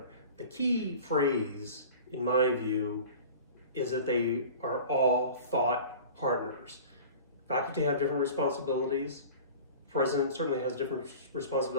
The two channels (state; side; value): inverted; both; correlation -0.40